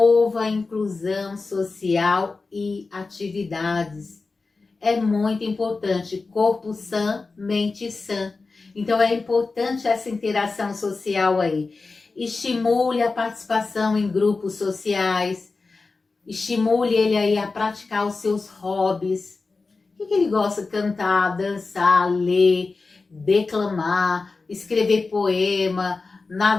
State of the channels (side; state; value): right; quieter; 4.0 dB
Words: a inclusão social e atividades. É muito importante, corpo sã, mente sã. Então é importante essa interação social aí. Estimule a participação em grupos sociais, estimule ele aí a praticar os seus hobbies. O que ele gosta? Cantar, dançar, ler, declamar, escrever poema,